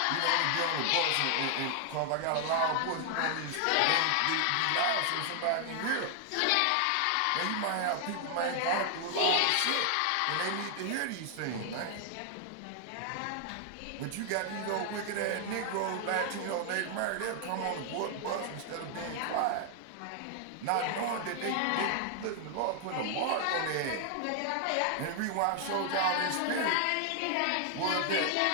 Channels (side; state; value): both; different; correlation 0.00